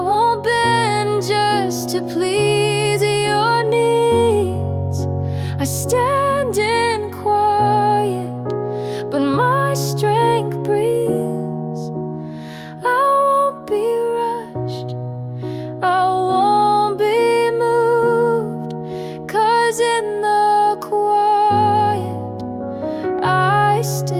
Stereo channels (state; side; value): identical; both; correlation 1.00